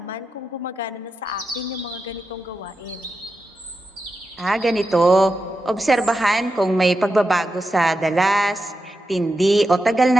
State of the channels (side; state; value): both; normal; correlation 0.89